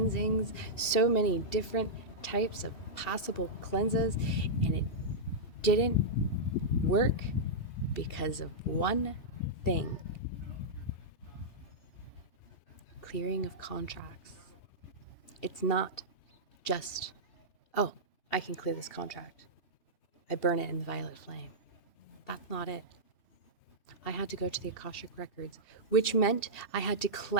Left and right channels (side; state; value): right; late; 2.7 ms